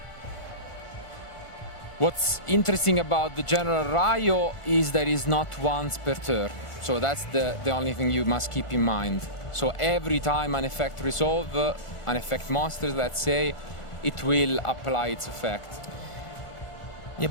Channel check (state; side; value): late; right; 1.4 ms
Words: What's interesting about the General Rayo is that it's not once per turn. So that's the only thing you must keep in mind. So every time an effect resolve, an effect monsters, let's say, it will apply its effect. Yeah,